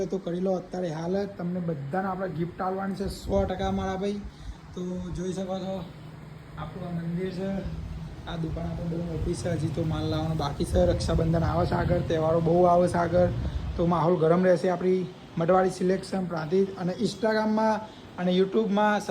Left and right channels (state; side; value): identical; both; correlation 1.00